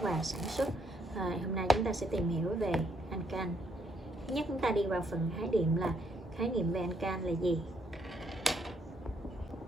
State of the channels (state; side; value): normal; both; correlation 0.73